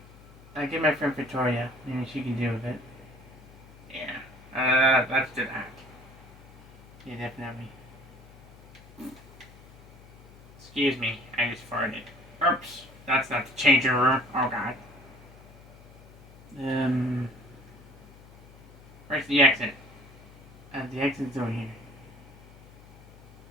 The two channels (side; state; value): left; noise; hum, 22 dB below the sound